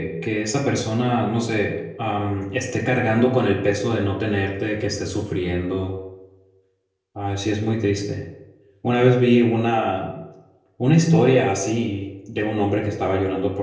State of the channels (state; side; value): identical; both; correlation 1.00